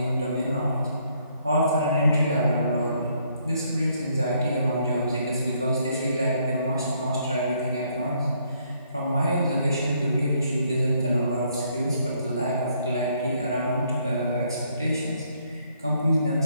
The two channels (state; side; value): inverted; both; correlation -0.69